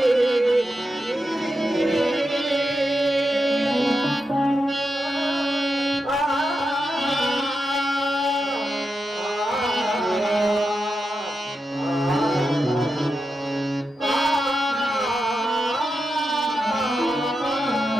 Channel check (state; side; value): normal; both; correlation 0.88